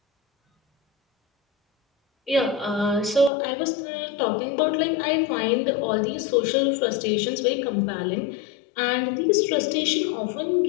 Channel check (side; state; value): right; drops out; at 3.3 s